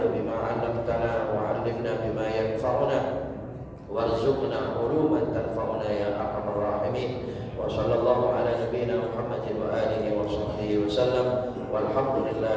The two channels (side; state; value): both; identical; correlation 1.00